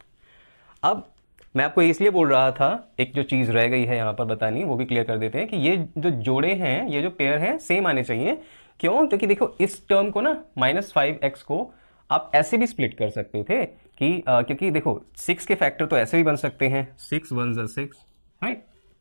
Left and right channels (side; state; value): both; inverted; correlation -1.00